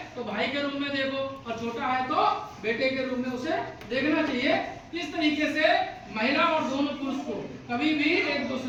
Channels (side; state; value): both; identical; correlation 1.00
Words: तो भाई के रूप में देखो, और छोटा है तो बेटे के रूप में उसे देखना चाहिए। इस तरीके से महिला और दोनों पुरुष को कभी भी एक